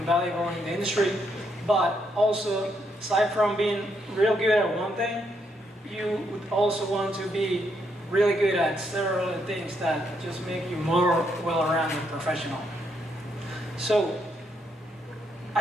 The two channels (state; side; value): normal; both; correlation 0.76